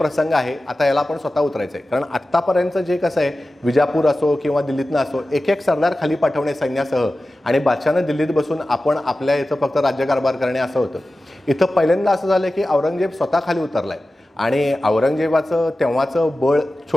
आहे आता याला आपण स्वतः उतरायचं आहे. कारण आत्तापर्यंत जे कसं आहे विजापूर असो किंवा दिल्लीतनं असो एक एक सरदार खाली पाठवणे सैन्यासह आणि बादशाहनं दिल्लीत बसून आपण आपल्या इथं फक्त राज्यकारभार करणे असं होतं. इथं पहिल्यांदा असं झालं की औरंगजेब स्वतः खाली उतरलाय आणि औरंगजेबाचं तेव्हाचं बळ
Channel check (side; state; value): both; normal; correlation 0.95